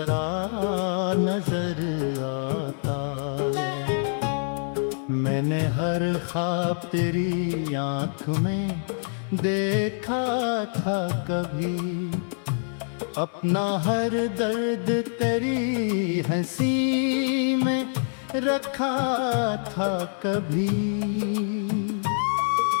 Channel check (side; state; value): right; silent; digital silence